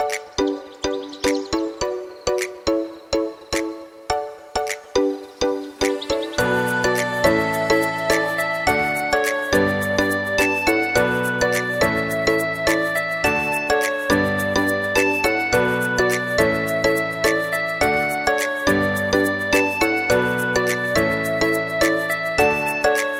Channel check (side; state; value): both; identical; correlation 1.00